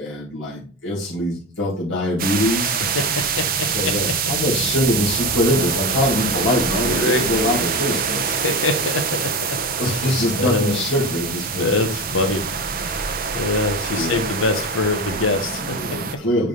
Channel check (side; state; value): both; normal; correlation 0.22